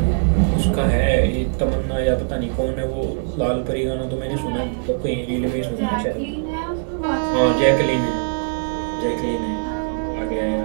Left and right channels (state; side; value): silent; left; 65 dB below the other